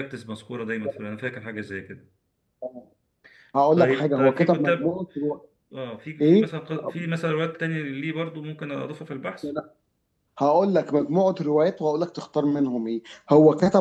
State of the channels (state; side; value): identical; both; correlation 1.00